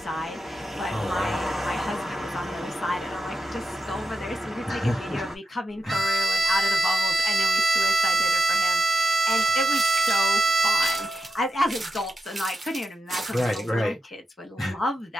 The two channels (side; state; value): both; normal; correlation 0.88